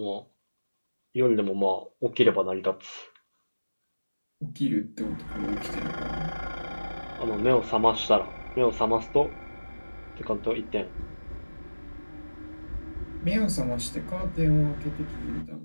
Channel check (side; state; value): both; inverted; correlation -1.00